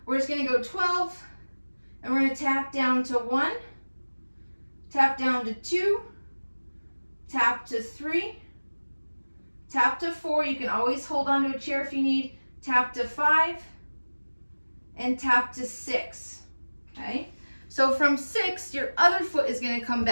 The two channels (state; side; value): inverted; both; correlation -1.00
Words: We're just gonna go 12, and we're gonna tap down to 1, tap down to 2, tap to 3, tap to 4. You can always hold onto a chair if you need. Tap to 5, and tap to 6, okay? So from 6, your other foot is gonna come